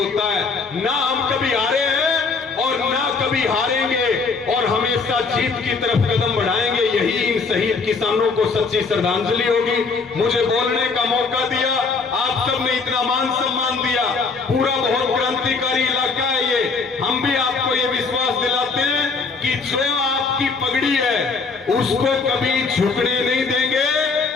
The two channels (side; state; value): right; quieter; 4.5 dB